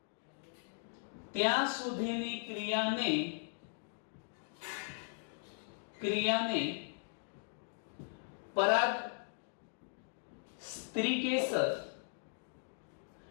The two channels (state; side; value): silent; right; digital silence